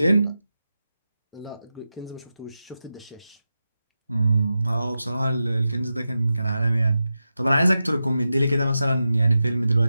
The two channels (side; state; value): both; inverted; correlation -0.91